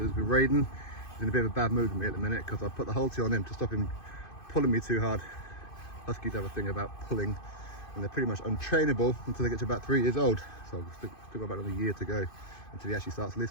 with Raiden. He's in a bit of a bad mood with me at the minute because I put the halter on him to stop him pulling me too hard. Huskies have a thing about pulling and they're pretty much untrainable until they get to about 3 years old. So I've still got about another year to go until he actually starts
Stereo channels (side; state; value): right; late; 2.5 ms